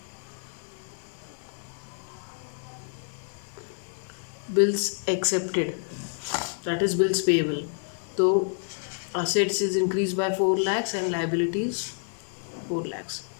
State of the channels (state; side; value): silent; right; 59 dB below the other